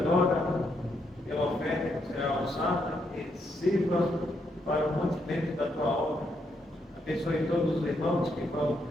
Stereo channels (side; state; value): both; normal; correlation 0.77